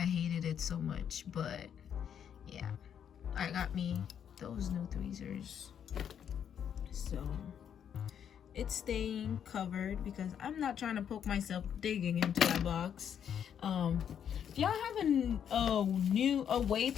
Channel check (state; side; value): quieter; right; 8.6 dB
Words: I hated it so much. But yeah, I got me those new tweezers, so it's staying covered because I'm not trying to poke myself digging into that box. If y'all have a way